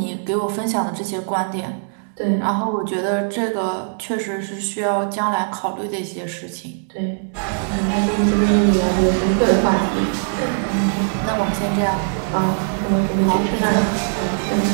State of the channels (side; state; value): left; silent; digital silence